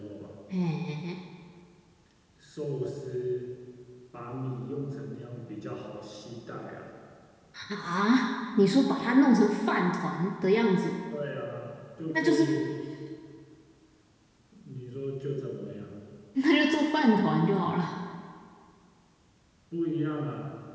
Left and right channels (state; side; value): identical; both; correlation 1.00